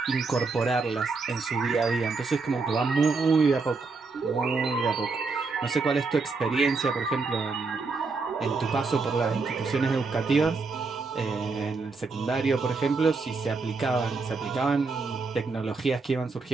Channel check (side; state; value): left; quieter; 4.2 dB